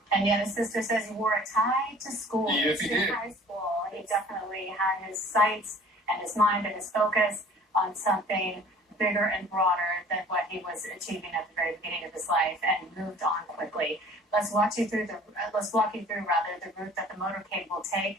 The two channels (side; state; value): both; normal; correlation 0.50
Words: And yet his sister says he wore a tie to school. Yes, he did. High school. He definitely had his sights and his mind and his focus on something bigger and broader than what he was achieving at the very beginning of his life, and moved on quickly. Let's walk you through the route that the motorcade will take